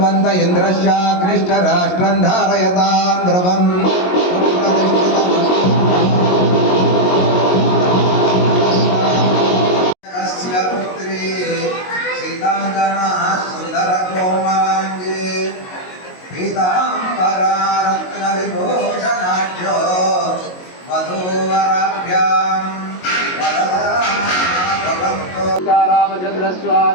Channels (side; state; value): right; late; 22 ms